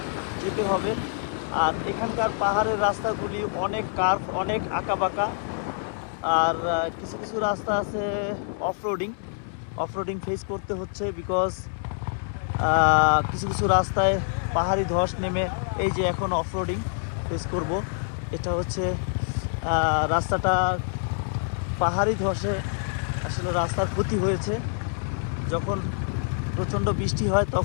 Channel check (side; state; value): right; silent; 61 dB below the other